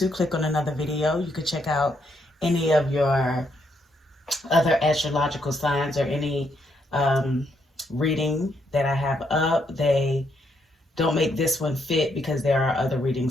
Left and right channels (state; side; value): normal; both; correlation 0.75